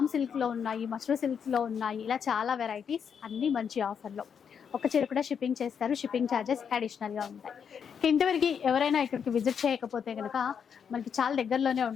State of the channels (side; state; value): right; quieter; 7.2 dB